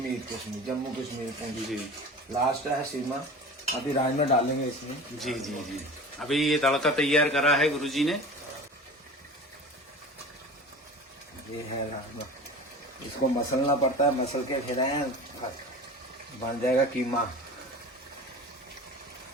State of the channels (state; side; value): normal; both; correlation 0.36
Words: जम्मू कश्मीर पुंछ जी। लास्ट है सीमा। अभी राजमा डालेंगे इसमें। जी जी जी। अभी ये तड़का तैयार करा है गुरुजी ने। ये है राजमा, इसको मसलना पड़ता है, मसल के फिर बन जाएगा कीमा।